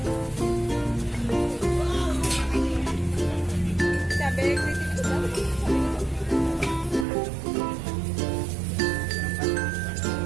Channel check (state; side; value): drops out; left; at 7.1 s